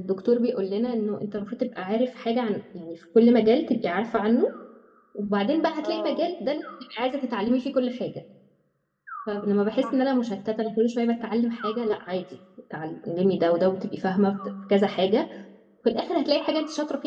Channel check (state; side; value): identical; both; correlation 1.00